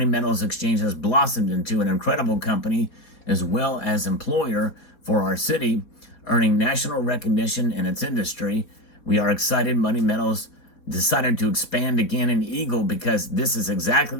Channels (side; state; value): right; late; 4.2 ms